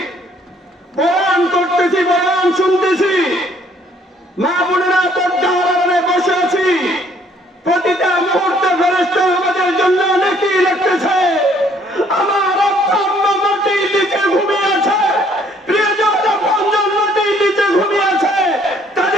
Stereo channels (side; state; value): both; normal; correlation 0.63